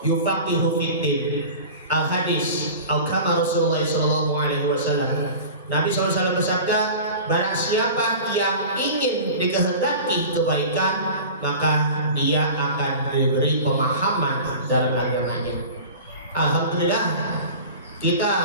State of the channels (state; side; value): inverted; both; correlation -0.37